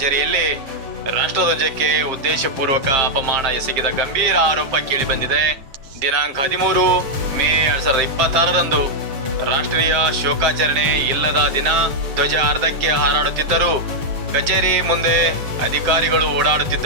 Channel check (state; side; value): late; left; 7.3 ms